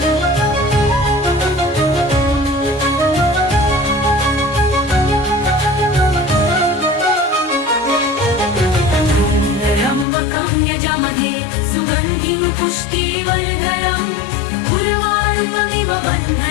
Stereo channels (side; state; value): right; drops out; at 10.1 s